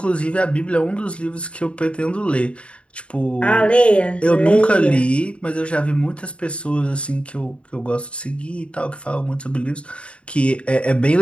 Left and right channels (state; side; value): late; right; 0.059 ms